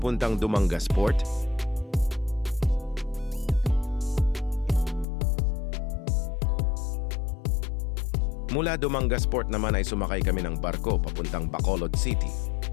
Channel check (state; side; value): drops out; right; at 5.1 s